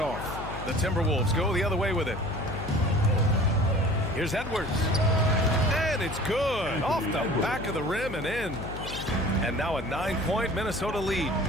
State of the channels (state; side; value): noise; left; hum, 9 dB below the sound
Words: The Timberwolves go the other way with it. Here's Edwards. And it's good. Off the back of the rim and in. And now a 9-point Minnesota lead.